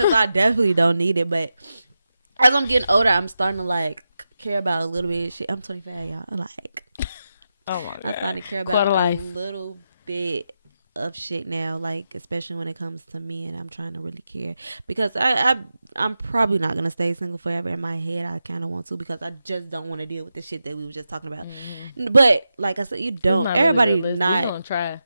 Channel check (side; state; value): both; inverted; correlation -0.89